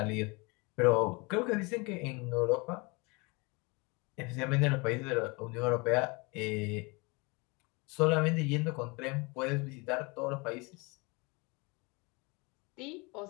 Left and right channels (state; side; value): quieter; right; 27.8 dB